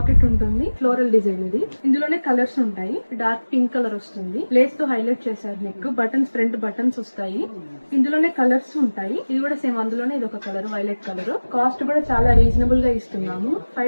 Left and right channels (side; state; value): both; inverted; correlation -1.00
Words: ఉంటుంది. ఫ్లోరల్ డిజైన్ ఇది. ఇందులోనే కలర్స్ ఉంటాయి. డార్క్ పింక్ కలర్ వస్తుంది. లేస్ తో హైలైట్ చేశారు. నెక్ బటన్స్, ఫ్రంట్ బటన్స్ వస్తాయి. ఇందులోనే కలర్స్ ఉంటాయి. ఇది కూడా సేమ్ అందులోనే ఇది ఒక కలర్, వైలెట్ కలర్. కాస్ట్ కూడా చాలా రీజనబుల్ గా ఇస్తున్నాము.